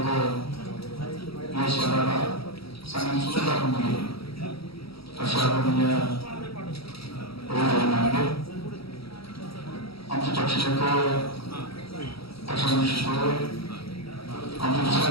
या शहराला चांगली सुविधा दाखवून दिली, अशा आदरणीय नांदे, आमचे पक्षाचे पक्षाध्यक्ष आमचे दुसरे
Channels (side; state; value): right; late; 0.76 ms